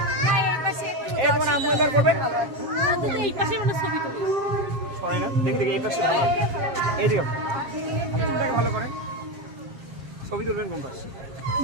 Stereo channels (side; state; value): left; late; 7.5 ms